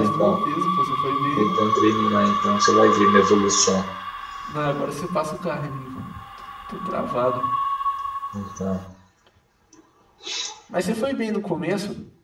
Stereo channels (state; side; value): identical; both; correlation 1.00